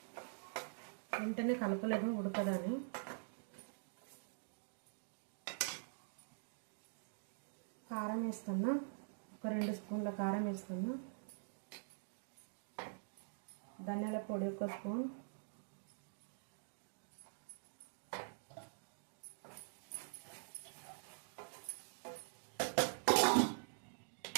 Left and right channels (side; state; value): left; silent; digital silence